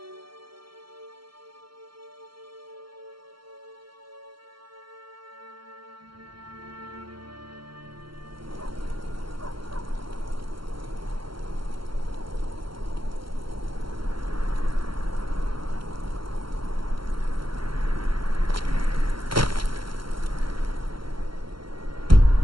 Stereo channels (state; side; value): late; left; 0.73 ms